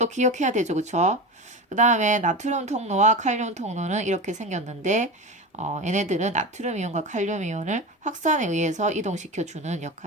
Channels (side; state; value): both; normal; correlation 0.25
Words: 기억해야 되죠, 그쵸? 그 다음에 나트륨 통로와 칼륨 통로는 이렇게 생겼는데 얘네들은 나트륨 이온과 칼륨 이온을 확산에 의해서 이동시켜주는